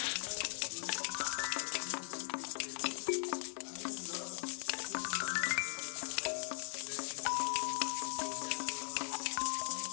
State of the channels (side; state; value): right; silent; 52 dB below the other